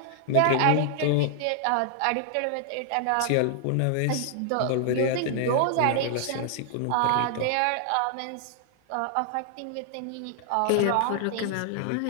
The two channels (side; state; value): both; different; correlation -0.01